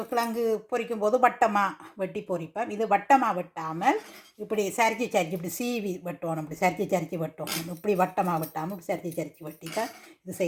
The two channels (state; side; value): identical; both; correlation 1.00